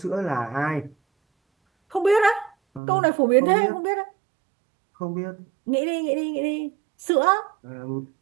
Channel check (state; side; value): drops out; left; at 2.8 s